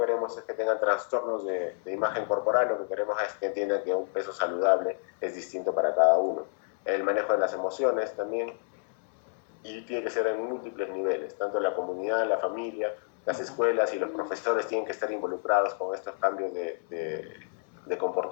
es que tengan trastornos de imagen corporal, lo que queremos es que entiendan que un peso saludable es distinto para cada uno. El manejo de las emociones también, y tiene que ser en múltiples niveles, tanto la comunidad, la familia, las escuelas y los profesores tienen que estar involucrados con estos cambios de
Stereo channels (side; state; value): right; silent; digital silence